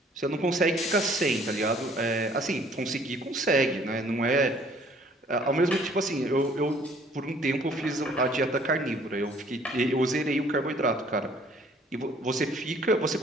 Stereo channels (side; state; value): both; normal; correlation 0.58